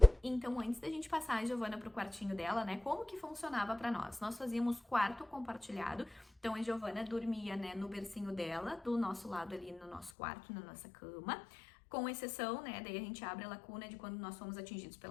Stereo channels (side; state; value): right; drops out; at 10.1 s